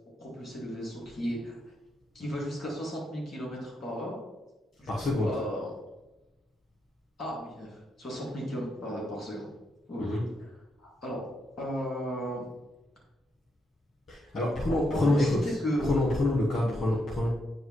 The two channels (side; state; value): both; normal; correlation 0.80